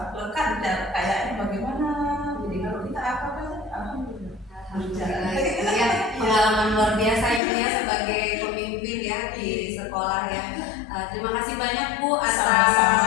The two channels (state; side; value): drops out; right; at 7.4 s